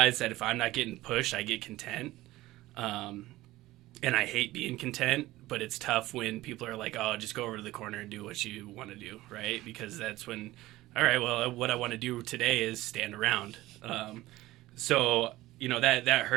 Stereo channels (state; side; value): quieter; left; 17.3 dB